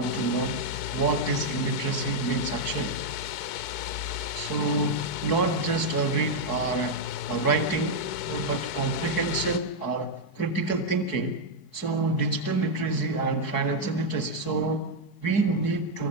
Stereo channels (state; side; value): late; right; 4.6 ms